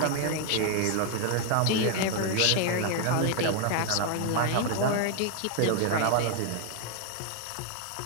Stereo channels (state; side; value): different; both; correlation 0.00